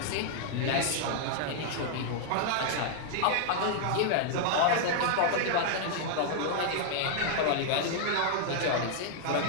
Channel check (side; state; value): both; different; correlation -0.01